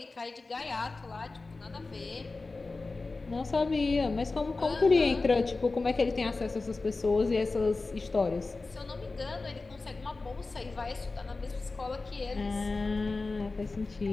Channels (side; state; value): right; quieter; 3.6 dB